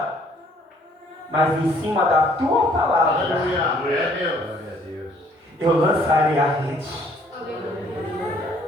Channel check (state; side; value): normal; both; correlation 0.61